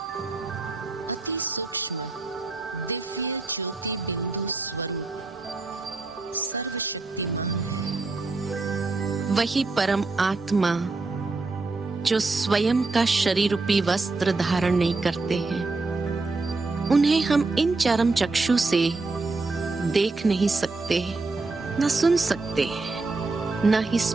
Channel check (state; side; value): quieter; left; 3.6 dB